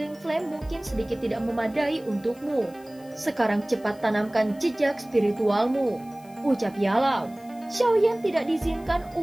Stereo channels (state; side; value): noise; left; hiss, 26 dB below the sound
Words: Flame mungkin sedikit tidak memadai untukmu. Sekarang cepat tanamkan jejak spiritualmu," ucap Yalo. Xiaoyan tidak diizinkan